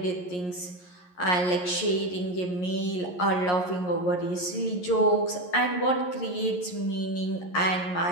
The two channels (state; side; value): late; right; 11 ms